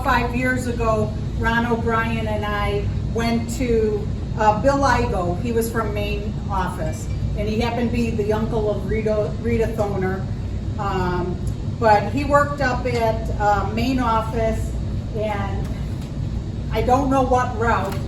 5 years ago, Ron O'Brien and I went to Bill Igo. He was from Main office, and he happened to be the uncle of Rita Thoner. But he worked up at Main office, and I don't know what route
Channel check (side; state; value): both; identical; correlation 1.00